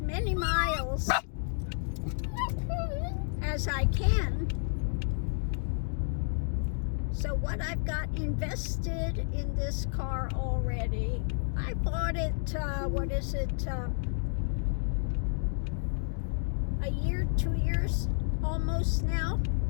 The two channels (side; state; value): right; silent; digital silence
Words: many miles as I can. So what I've got invested in this car already, I bought it, a year, 2 years almost now.